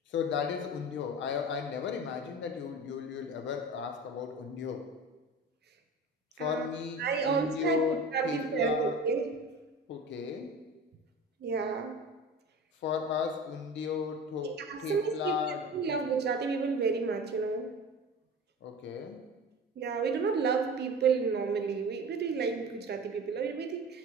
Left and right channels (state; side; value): normal; both; correlation 0.35